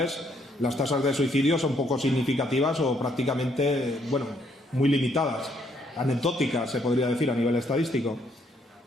las tasas de suicidio son poco significativas o prácticamente, bueno, muy limitadas, anecdóticas, se podría decir, a nivel estadístico.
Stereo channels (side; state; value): both; normal; correlation 0.70